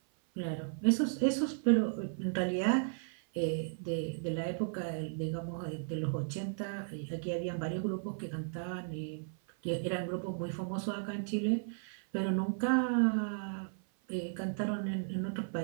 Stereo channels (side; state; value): left; silent; 54 dB below the other